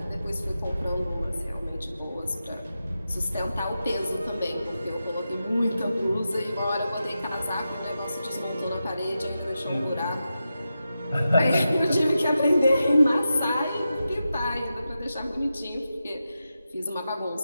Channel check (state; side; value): inverted; both; correlation -0.90